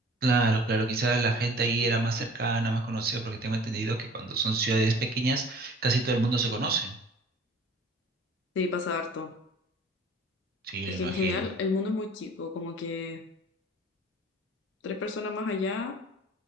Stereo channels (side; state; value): both; normal; correlation 0.48